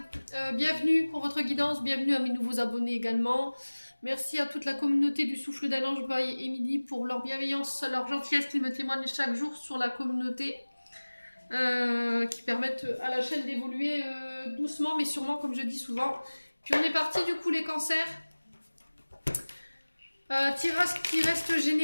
bienvenue pour votre guidance, bienvenue à mes nouveaux abonnés également. Merci à toute la communauté du Souffle d'un Ange by Émilie pour leur bienveillance, leur gentillesse qu'ils me témoignent chaque jour sur la communauté. Qui permettent à la chaîne d'évoluer doucement mais sûrement, comme je dis souvent. Puis on est parti du coup les cancers. Tirage qui reste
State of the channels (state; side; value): inverted; both; correlation -1.00